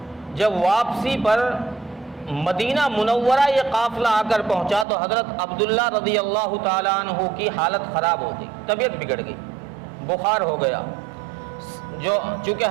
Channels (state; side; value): drops out; left; at 4.9 s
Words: جب واپسی پر مدینہ منورہ یہ قافلہ آ کر پہنچا تو حضرت عبداللہ رضی اللہ تعالیٰ عنہ کی حالت خراب ہو گئی، طبیعت بگڑ گئی، بخار ہو گیا۔ چونکہ